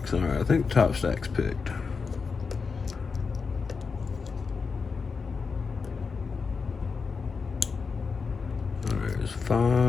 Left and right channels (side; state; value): right; quieter; 5.1 dB